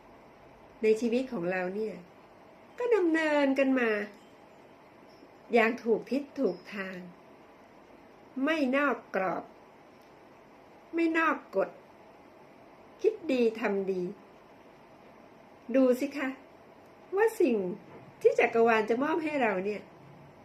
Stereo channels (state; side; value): identical; both; correlation 1.00